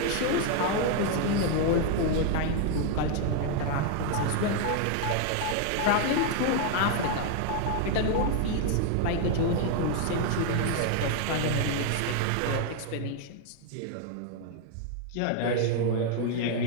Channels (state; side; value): different; both; correlation 0.01